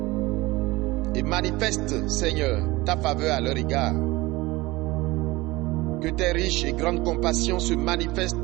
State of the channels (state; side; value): quieter; left; 20.8 dB